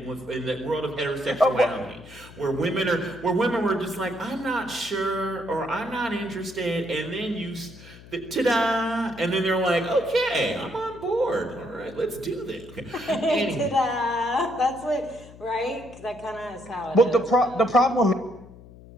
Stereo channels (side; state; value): left; noise; hum, 19 dB below the sound